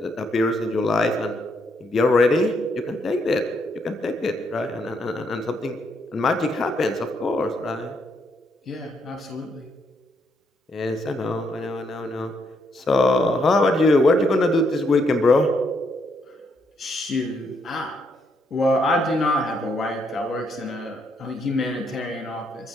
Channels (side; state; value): both; normal; correlation 0.75